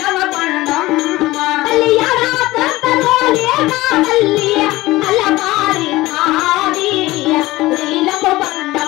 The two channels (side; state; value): right; quieter; 18.6 dB